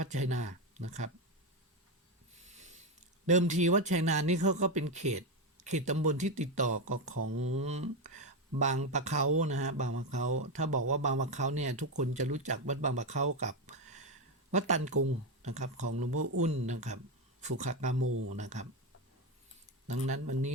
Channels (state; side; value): normal; both; correlation 0.11